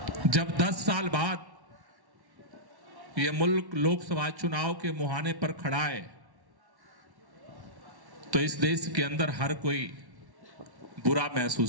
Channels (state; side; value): late; left; 1.1 ms